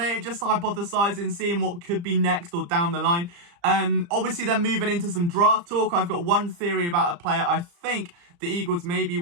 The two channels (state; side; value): late; left; 35 ms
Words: it, just hypothesising, seeing what could be next or down the line. Obviously, then moving into some draft talk. I've got one theory about a player I think the Eagles may be